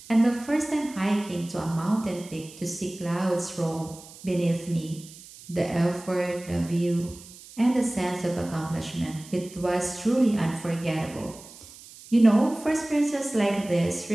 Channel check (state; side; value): noise; right; hiss, 19 dB below the sound